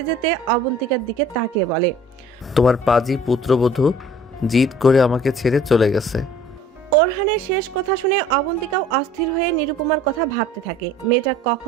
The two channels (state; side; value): normal; both; correlation 0.50